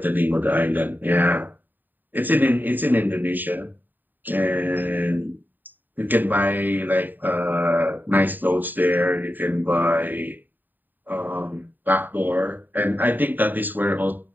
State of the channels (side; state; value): left; late; 0.090 ms